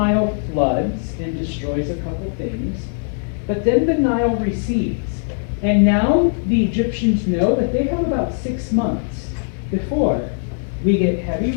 floods and destroys a couple things, but then the Nile recedes. And now the Egyptians know that they have about 6 months before we get heavy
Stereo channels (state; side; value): silent; right; 66 dB below the other